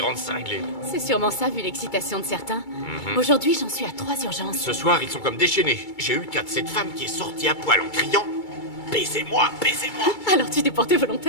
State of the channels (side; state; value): right; late; 2.3 ms